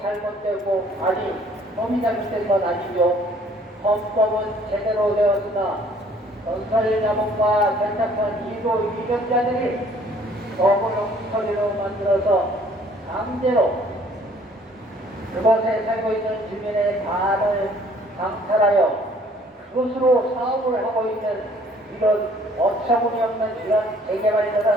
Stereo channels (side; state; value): both; normal; correlation 0.58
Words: 잘못되고, 아니, 법이 잘못된 건 아니죠. 헌법은 제대로 되었으나 건설자본과 결탁한 일부 위력자들이 법을 엉터리로 만들어서 강제로 그곳에 살고 있는 주민의 반을 강탈하여 그것으로 사업을 하고 있는 이런 어처구니없는 이런